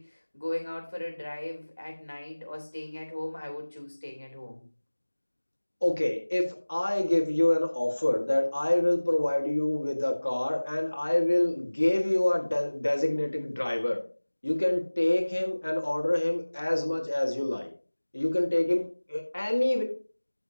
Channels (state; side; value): inverted; both; correlation -1.00